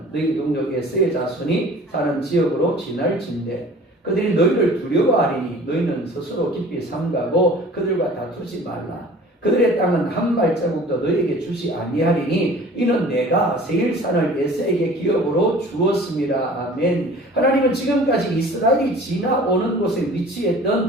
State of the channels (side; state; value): both; normal; correlation 0.46